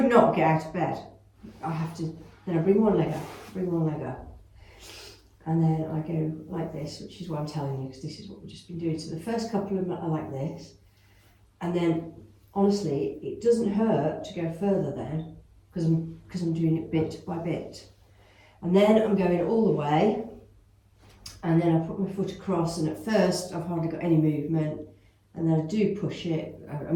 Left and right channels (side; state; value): both; identical; correlation 1.00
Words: not get out of bed. I have to, then I bring one leg up, and then I go like this, which is what I'm telling you, because this is what we've just been doing. So the first couple of them are like this, and then, honestly, it doesn't hurt to go further then, because I'm doing it bit by bit. And then I'm going all the way, and then I put my foot across, and at first I've hardly got any movement, and then I do push it.